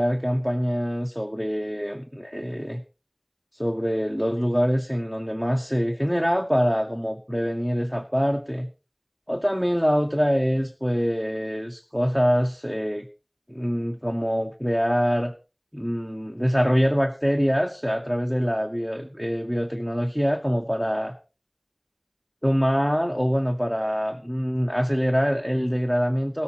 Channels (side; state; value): both; identical; correlation 1.00